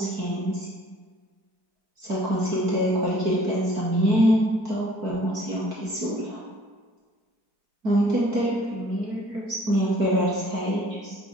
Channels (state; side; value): late; left; 4.6 ms